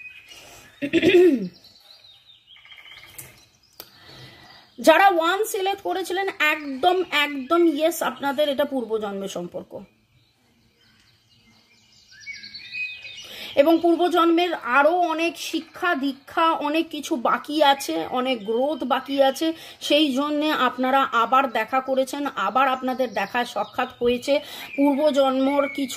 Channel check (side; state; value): both; identical; correlation 1.00